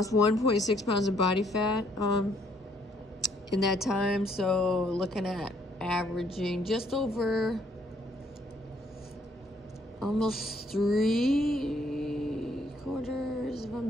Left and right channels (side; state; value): both; normal; correlation 0.67